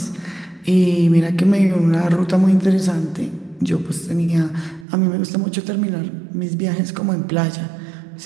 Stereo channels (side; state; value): left; drops out; at 4.9 s